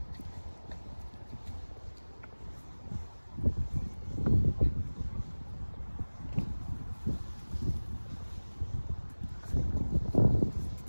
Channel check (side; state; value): both; inverted; correlation -1.00